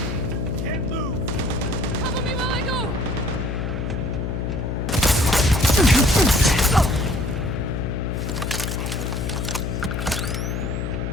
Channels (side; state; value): left; noise; hum, 2 dB below the sound